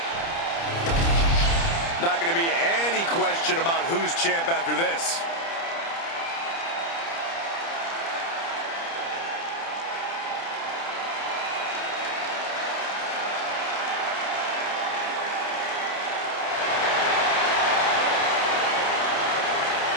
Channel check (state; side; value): late; right; 30 ms